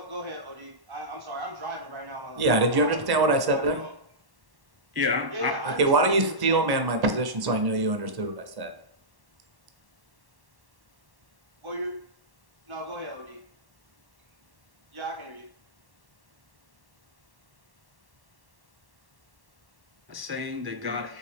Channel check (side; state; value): left; late; 1.1 ms